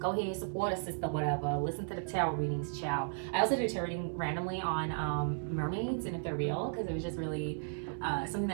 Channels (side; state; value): left; silent; 55 dB below the other